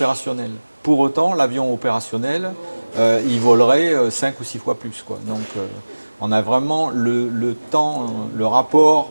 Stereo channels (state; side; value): inverted; both; correlation -1.00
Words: Pour autant, l'avion opérationnel, il volerait 5 ou 6 fois plus, quoi. Donc on a vraiment le temps, le